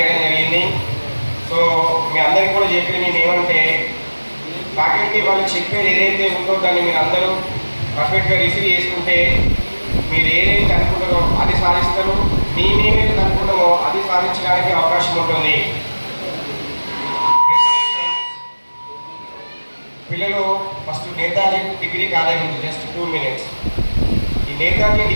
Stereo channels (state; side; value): inverted; both; correlation -1.00